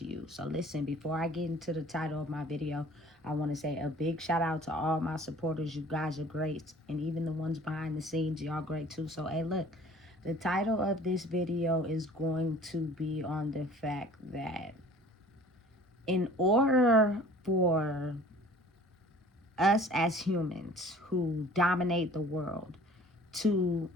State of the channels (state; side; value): normal; both; correlation 0.49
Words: you. So listen, before I get into the title of my video, I want to say a big shout out to all my supporters. You guys are great. And even the ones behind the scenes, y'all great too. So, hey, look, the title of this video is going to be on the fact that in order for us as humans who dominate the world to